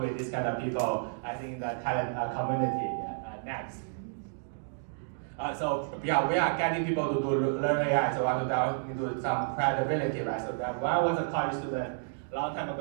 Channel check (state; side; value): silent; left; digital silence